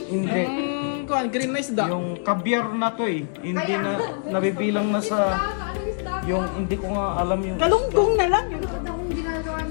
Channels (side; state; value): right; silent; digital silence